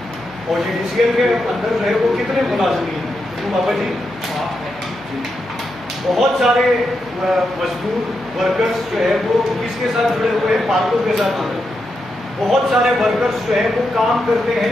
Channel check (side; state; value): right; noise; hum, 21 dB below the sound